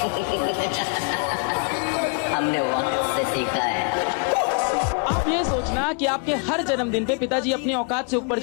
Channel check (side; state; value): right; quieter; 37.1 dB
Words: हमने वक्त से सीखा है। आप ये सोचना कि आपके हर जन्मदिन पे पिताजी अपनी औकात से ऊपर